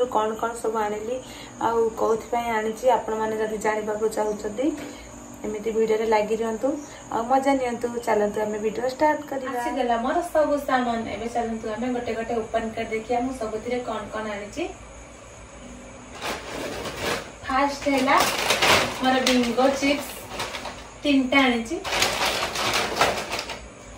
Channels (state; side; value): identical; both; correlation 1.00